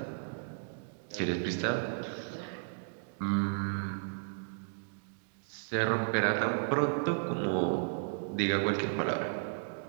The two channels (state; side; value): silent; left; digital silence